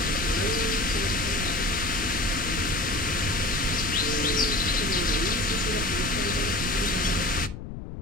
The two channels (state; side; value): noise; left; rumble, 9 dB below the sound